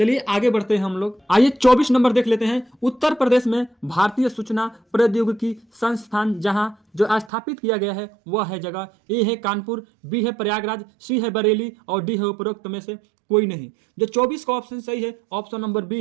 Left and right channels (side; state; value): left; drops out; at 7.3 s